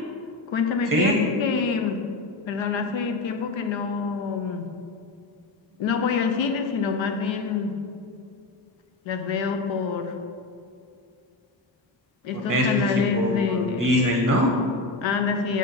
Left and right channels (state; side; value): quieter; right; 3.2 dB